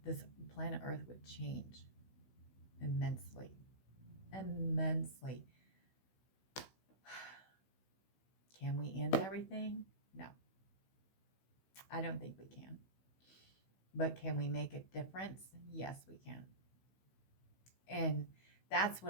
This planet Earth would change immensely. Immensely. Can we end everything? No. I don't think we can. But can we make a difference? Yes, we can. And that's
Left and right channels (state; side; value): late; right; 16 ms